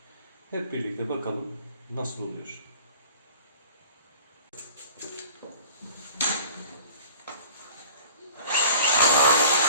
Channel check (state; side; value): inverted; both; correlation -0.45